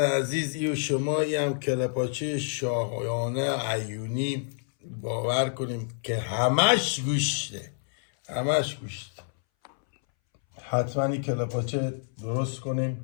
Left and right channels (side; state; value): right; silent; 59 dB below the other